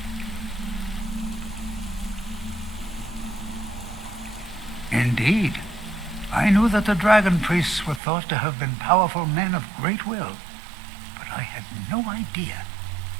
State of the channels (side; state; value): left; drops out; at 8.0 s